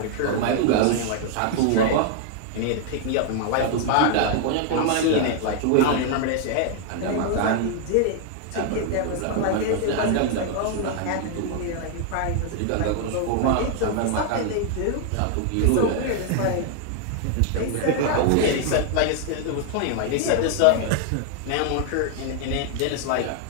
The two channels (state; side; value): different; both; correlation 0.00